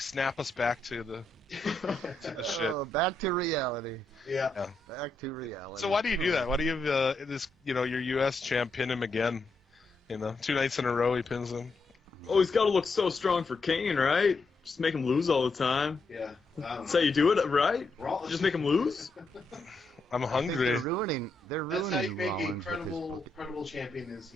snap us back to the shit. Oh, back to reality. Yeah. Back to reality. So why do you do that? Why do you have this? Your U.S. champ pin him again? 2 nights in a row he pins him. Oh, he's got to look so strong for Kane, right? Just make him lose all the time. Yeah. That's how you do it, right? Just make him lose? I'm hungry. They're ruining That's how you make a Rollins. credible champion is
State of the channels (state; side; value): quieter; right; 3.0 dB